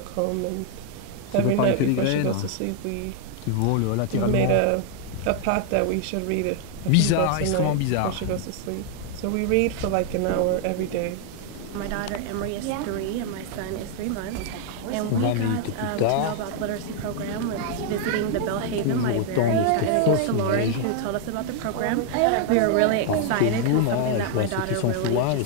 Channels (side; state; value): both; different; correlation 0.00